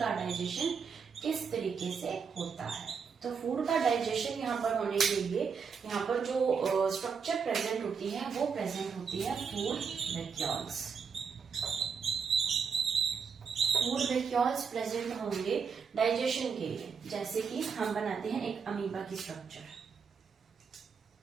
डाइजेशन किस तरीके से होता है। तो फूड का डाइजेशन यहाँ पर होने के लिए यहाँ पर जो स्ट्रक्चर प्रेजेंट होती है वो प्रेजेंट होती है food vacuoles. Food vacuoles present होंगे डाइजेशन के लिए। जैसे कि हम बनाते हैं एक अमीबा की स्ट्रक्चर,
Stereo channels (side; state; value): left; quieter; 6.1 dB